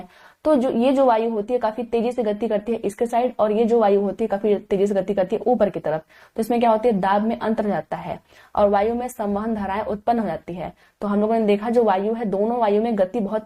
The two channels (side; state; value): both; identical; correlation 1.00